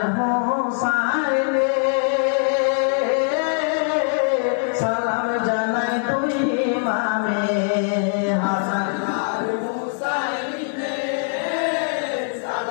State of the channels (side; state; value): right; silent; 57 dB below the other